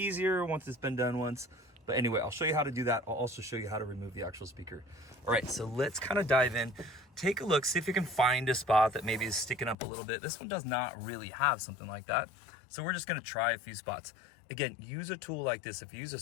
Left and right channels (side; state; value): right; drops out; at 9.8 s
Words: once it's been done once. But anyway, I'll show you how to do that. I'll also show you how to remove the actual speaker. All right, so let's kind of dive in. Take a look, see if you can find a spot that maybe is sticking up a little bit. This one does not really have something like that. So we're just gonna try a few spots. Again, use a tool like this. If you use a